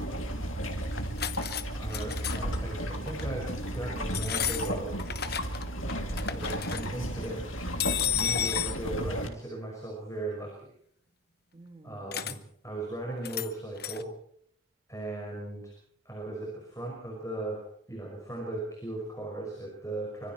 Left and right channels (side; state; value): both; normal; correlation 0.35